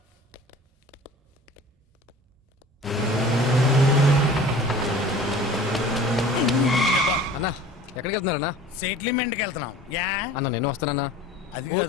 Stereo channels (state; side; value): normal; both; correlation 0.44